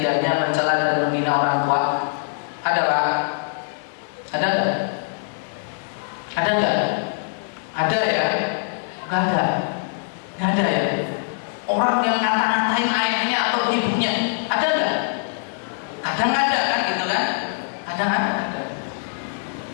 mencela dan menghina orang tua? Ada Pak? Ada nggak? Ada nggak? Ada ya? Nggak ada. Nggak ada ya? Orang yang ngata-ngatain ayahnya atau ibunya, ada nggak? Kadang ada kan gitu kan? Ada.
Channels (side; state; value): right; silent; digital silence